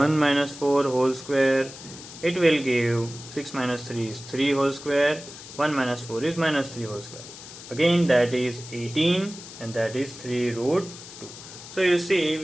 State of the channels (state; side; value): noise; left; hiss, 15 dB below the sound